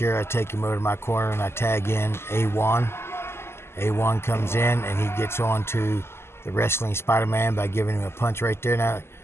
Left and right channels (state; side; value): late; right; 0.12 ms